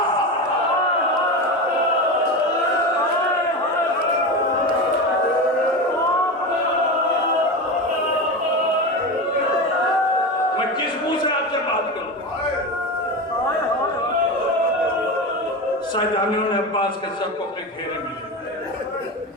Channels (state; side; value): normal; both; correlation 0.22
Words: मैं किस मुंह से आपसे बात करूं? शाहजहानियों ने अब्बास के सर को अपने घेरे में लिया।